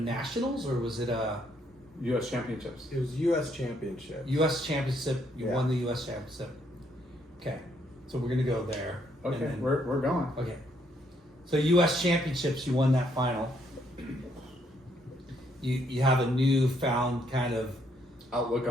or was it a U.S. Championships. It was U.S. Championship. U.S. championship? You Yeah. won the U.S. championship. Okay. So we're going to go there. and Okay, then- we're going. okay. So U.S. championships, you won that final. You have a newfound kind of Outlook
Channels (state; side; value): normal; both; correlation 0.71